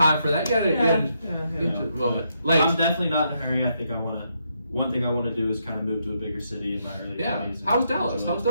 for that. You gotta I'm definitely not in a hurry. I think one thing I want to do is kind of move to a bigger city in my early 20s. How was Dallas? Tell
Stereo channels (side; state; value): both; inverted; correlation -0.78